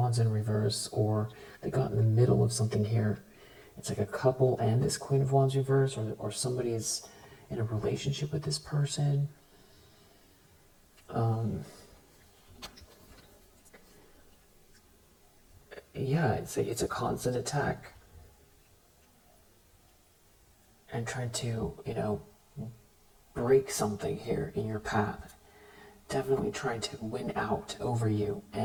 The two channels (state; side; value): identical; both; correlation 1.00